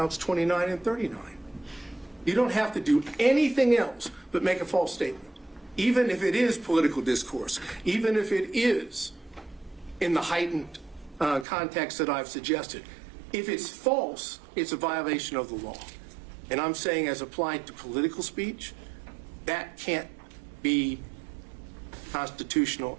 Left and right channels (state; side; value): drops out; left; at 11.5 s